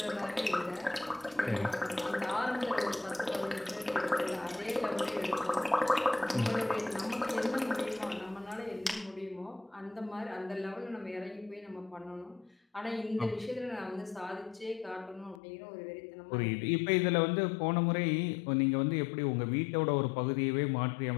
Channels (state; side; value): drops out; right; at 15.4 s